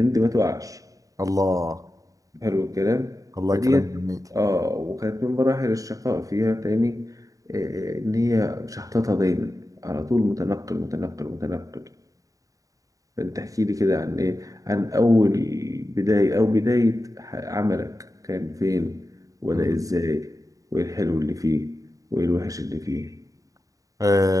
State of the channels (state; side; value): late; left; 0.16 ms